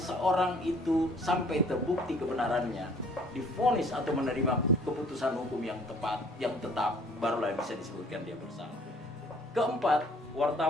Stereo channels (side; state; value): both; normal; correlation 0.56